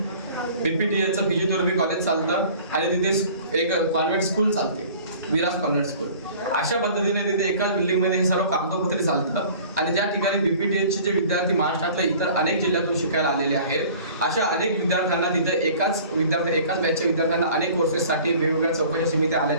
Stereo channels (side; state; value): both; inverted; correlation -0.47